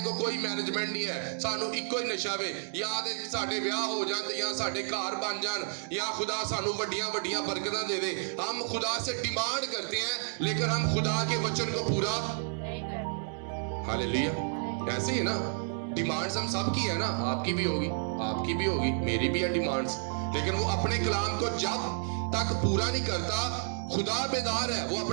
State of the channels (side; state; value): left; silent; digital silence